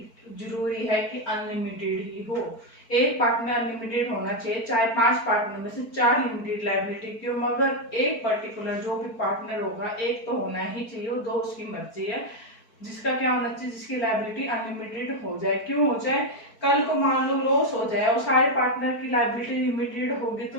जरूरी है कि अनलिमिटेड ही हो। एक पार्टनर अनलिमिटेड होना चाहिए, चाहे 5 पार्टनर में से 4 लिमिटेड लायबिलिटी क्यों, मगर एक पर्टिकुलर जो भी पार्टनर होगा एक तो होना ही चाहिए, वो 2 उसकी मर्जी है, जिसका क्या होना चाहिए, जिसकी लायबिलिटी अनलिमिटेड हो जाए। क्यों हो जाए, कल को मान लो लॉस हो जाए और सारे पार्टनर की लायबिलिटी लिमिटेड होगी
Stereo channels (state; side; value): late; right; 4.5 ms